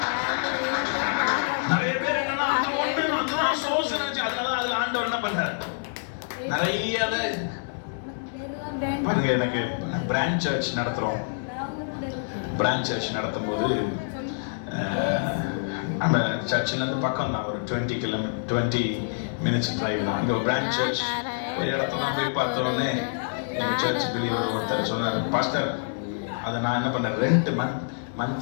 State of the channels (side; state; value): right; silent; digital silence